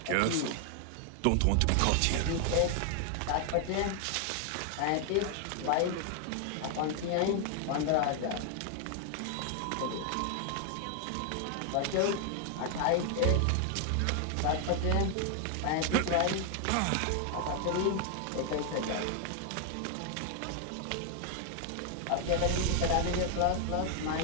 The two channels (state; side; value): different; both; correlation 0.00